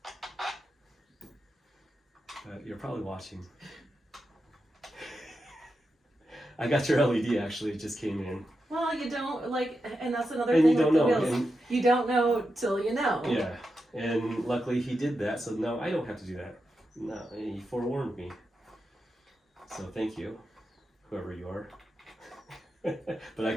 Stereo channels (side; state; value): both; normal; correlation 0.88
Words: You're probably watching. I got your LED actually, it just came in. Well, you don't like, and that's another And thing you don't with the know. wheels. And, you don't know till you know. yeah, and luckily he did that, so now I don't have to do that. No, he forewarned me. So thank you, whoever you are. But I